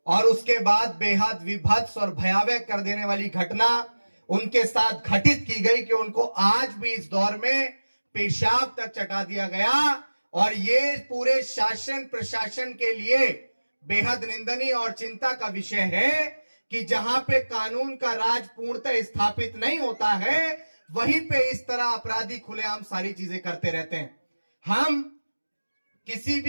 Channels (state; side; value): inverted; both; correlation -1.00